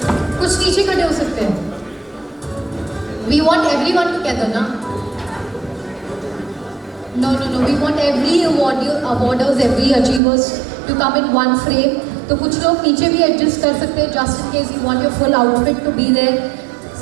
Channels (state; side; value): drops out; left; at 10.2 s